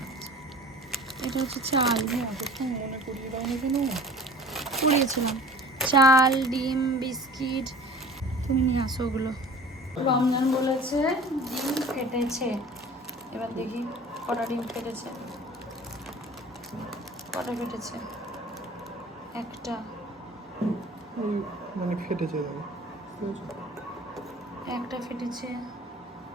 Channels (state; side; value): normal; both; correlation 0.43